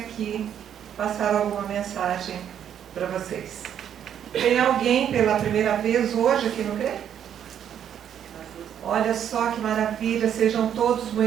passar alguma mensagem para vocês. Tem alguém pela primeira vez hoje aqui no CRE? Olha só que maravilha, sejam todos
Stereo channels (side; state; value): left; quieter; 9.3 dB